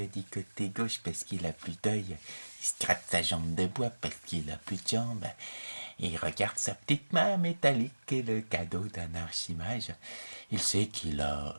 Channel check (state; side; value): inverted; both; correlation -1.00